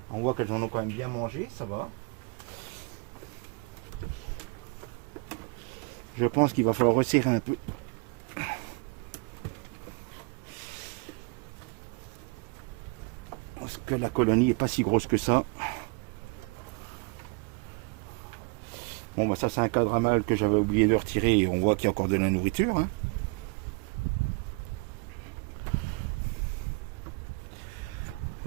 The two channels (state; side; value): quieter; left; 31.8 dB